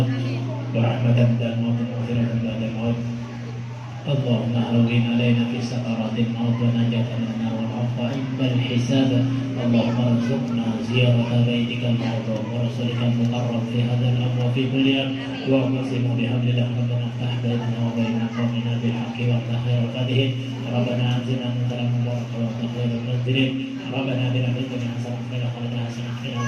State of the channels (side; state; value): both; identical; correlation 1.00